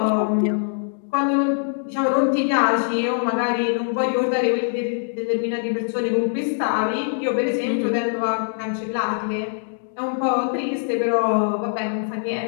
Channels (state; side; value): silent; right; digital silence